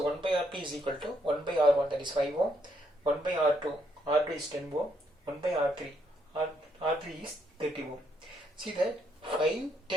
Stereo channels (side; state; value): both; normal; correlation 0.74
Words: 1 by Rp is equal to 1 by R1, that is 5 ohm, 1 by R2, R2 is 10 ohm, 1 by R3, R3 is 30 ohm. See that 5,